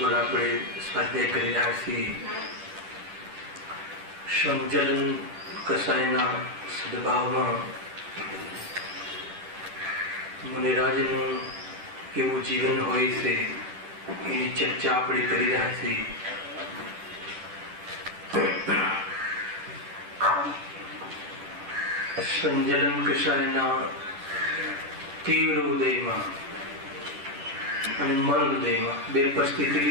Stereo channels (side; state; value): left; late; 10 ms